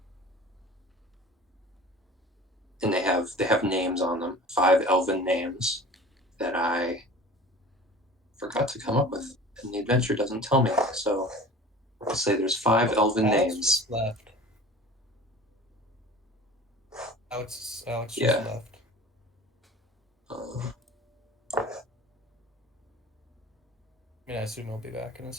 And they have names on them, 5 elven names that I forgot to come up with, and the adventure doesn't tell me. So I'll say there's 5 elven names. Left. Alex Yeah. just left. I mean, I assume he'll be back in a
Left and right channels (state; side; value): normal; both; correlation 0.41